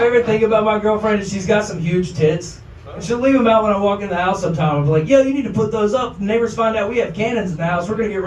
thing about my girlfriend is she's got some huge tits. And she'll leave them out when I walk in the house sometime. I'll be like, yo, you need to put those up. The neighbors find out we have cannons in the house. We're going to get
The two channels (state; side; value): identical; both; correlation 1.00